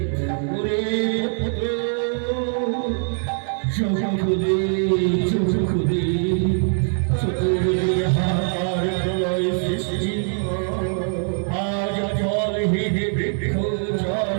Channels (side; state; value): left; silent; 64 dB below the other